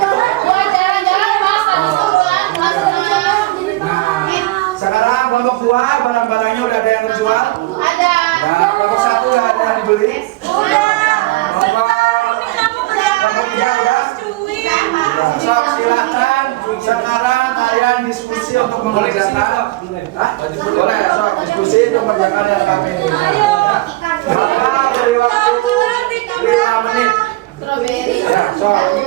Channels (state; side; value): quieter; left; 19.9 dB